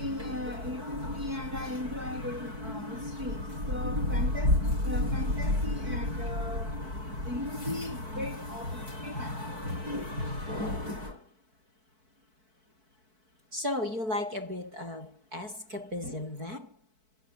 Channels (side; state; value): left; late; 4.6 ms